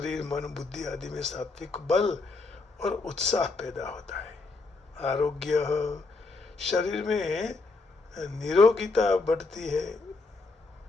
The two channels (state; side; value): quieter; right; 3.7 dB